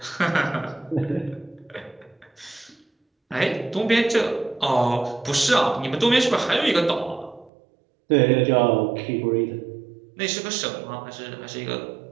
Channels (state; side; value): drops out; left; at 7.5 s